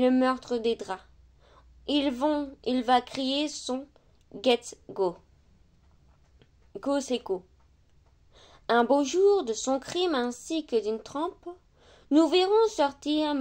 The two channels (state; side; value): identical; both; correlation 1.00